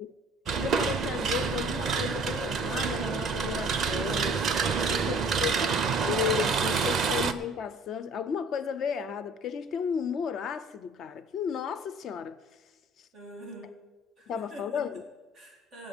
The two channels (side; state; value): both; normal; correlation 0.52